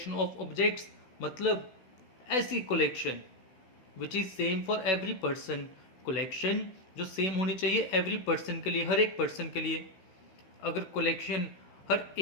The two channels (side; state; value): right; late; 16 ms